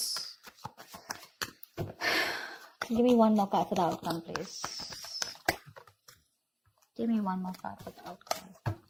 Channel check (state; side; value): identical; both; correlation 1.00